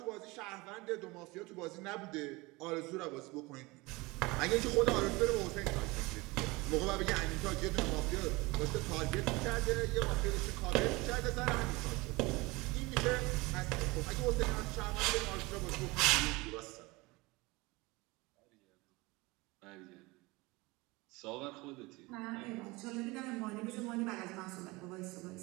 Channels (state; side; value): quieter; left; 23.4 dB